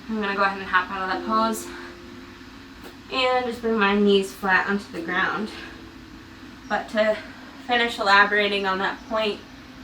I'm going to go ahead and hop out of that pose and just bring my knees flat onto the ground. But to finish elaborating on that point,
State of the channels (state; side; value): identical; both; correlation 1.00